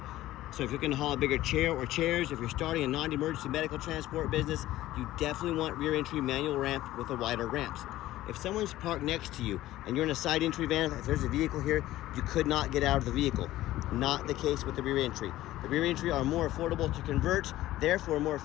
So if you're going to haul a bigger chair or chairs, if you're starting a non-emergency medical transport business, you definitely want rear entry manual ramp with the wider ramps. If someone's parked next to you and you're in a side entry van, if there's a vehicle here, you could not get out of the vehicle. Not the case with the rear entry. The rear entry are more affordable to convert, therefore more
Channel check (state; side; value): quieter; right; 15.3 dB